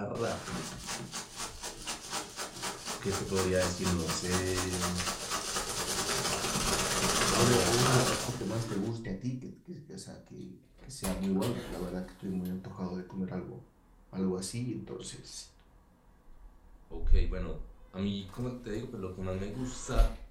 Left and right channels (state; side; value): identical; both; correlation 1.00